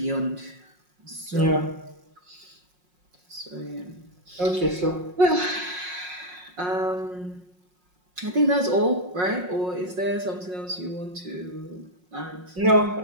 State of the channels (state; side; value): late; left; 5.5 ms